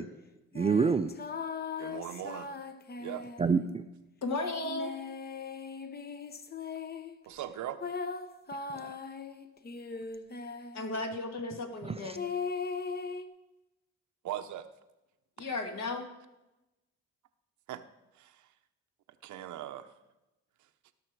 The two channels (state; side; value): normal; both; correlation 0.33